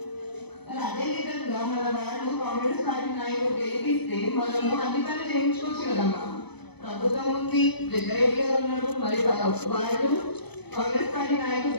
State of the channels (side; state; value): right; late; 0.98 ms